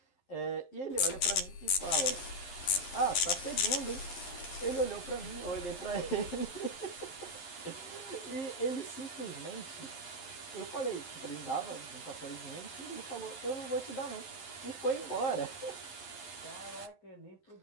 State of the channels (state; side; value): late; right; 11 ms